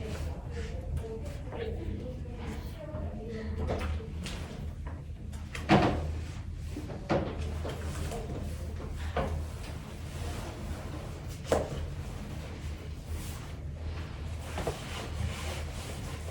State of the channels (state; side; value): identical; both; correlation 1.00